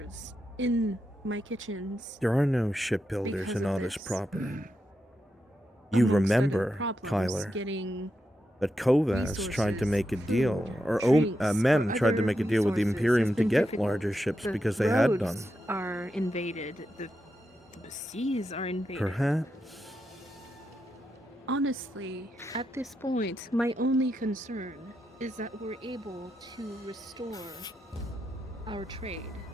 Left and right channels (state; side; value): normal; both; correlation 0.86